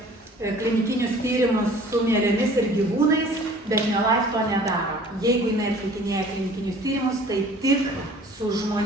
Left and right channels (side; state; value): both; normal; correlation 0.49